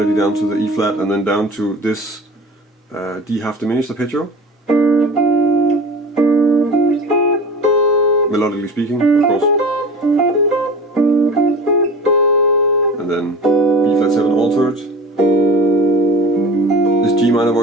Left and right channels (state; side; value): normal; both; correlation 0.36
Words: down to the E flat and then down to this D half diminished arpeggio, melodically speaking, of course, and then B flat 7 altered, this G minor